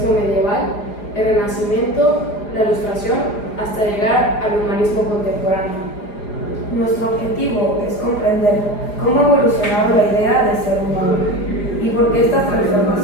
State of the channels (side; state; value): right; late; 4.9 ms